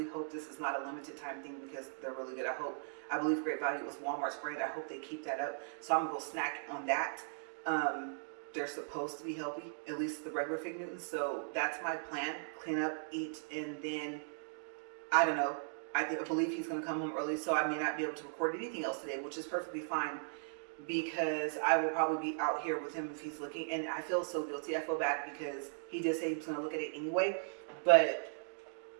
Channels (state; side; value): silent; left; digital silence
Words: hope this is not a limited time thing because they're really good. I believe Great Value was Walmart's brand. I hope they keep that up. So I'm gonna go snack on that. They're supposed to be healthy, at least the regular fig Newtons. So that's my plan. Clean up, eat, and then, I don't know. I believe he's going to come home early, so I may not be able to record anything else today, which is perfectly fine because I will probably be out here with him if he's looking. And I feel so guilty. I feel bad because he did say he was going to look at it anyway. But,